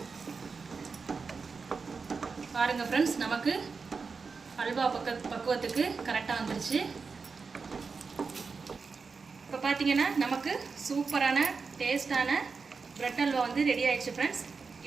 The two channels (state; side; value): quieter; left; 4.9 dB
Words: பாருங்கள் ஃப்ரெண்ட்ஸ், நமக்கு அல்வா பக்குவத்துக்கு கரெக்டாக வந்துருச்சு. இப்போ பார்த்தீங்கன்னா நமக்கு சூப்பரான டேஸ்டான பிரெட் அல்வா வந்து ரெடி ஆயிடுச்சு ஃப்ரெண்ட்ஸ்.